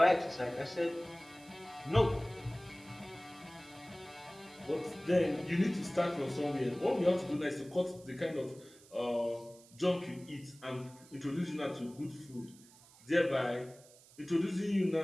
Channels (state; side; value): noise; right; hiss, 24 dB below the sound